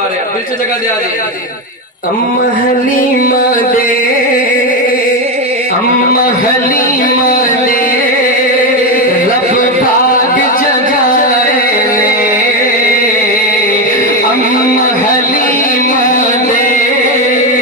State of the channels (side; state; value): both; normal; correlation 0.11